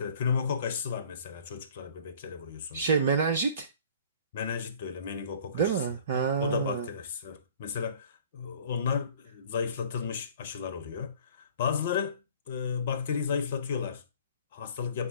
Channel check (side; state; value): both; inverted; correlation -0.50